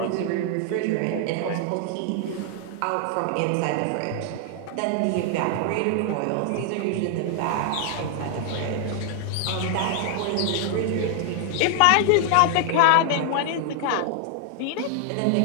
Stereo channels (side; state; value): both; different; correlation 0.00